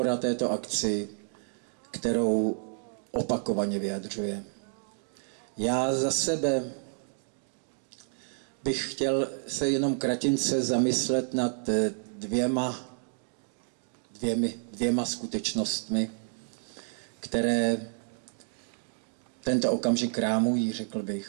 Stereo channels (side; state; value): left; silent; digital silence